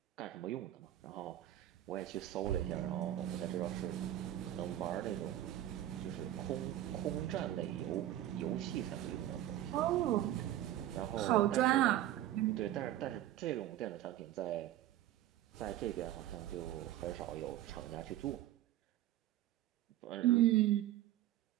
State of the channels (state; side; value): quieter; left; 13.2 dB